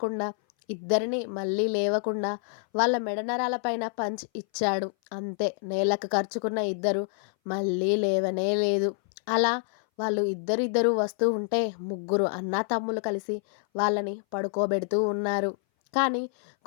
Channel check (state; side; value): silent; right; 59 dB below the other